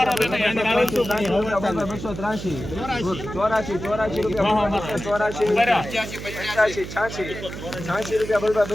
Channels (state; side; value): noise; right; hum, 9 dB below the sound